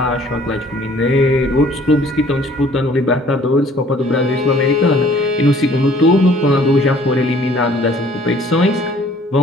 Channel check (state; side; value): normal; both; correlation 0.56